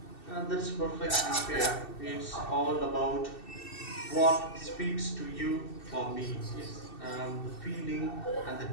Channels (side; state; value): right; late; 2.7 ms